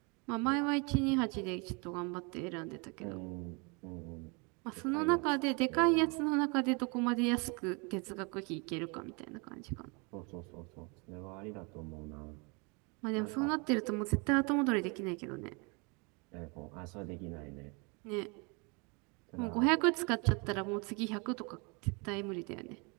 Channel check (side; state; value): left; quieter; 31.3 dB